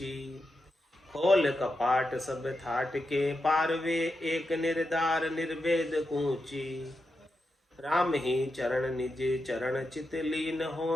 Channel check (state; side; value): normal; both; correlation 0.88